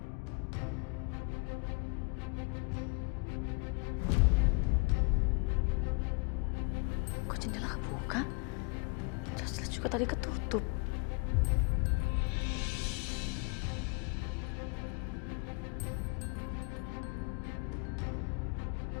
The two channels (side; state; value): right; quieter; 31.6 dB